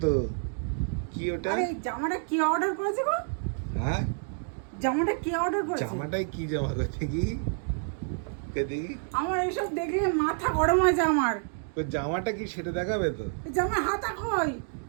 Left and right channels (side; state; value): left; silent; 59 dB below the other